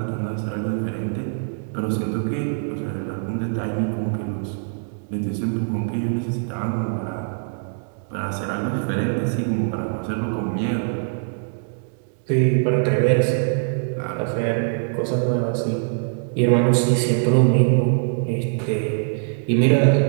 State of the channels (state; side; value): silent; left; 64 dB below the other